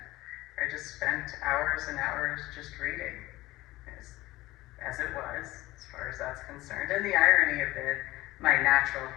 I just spent hours and hours just reading, as it was, as far as that's concerned. And the irony of it, my natural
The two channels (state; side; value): quieter; right; 18.0 dB